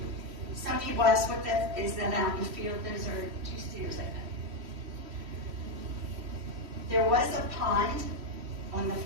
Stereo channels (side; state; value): left; late; 3.1 ms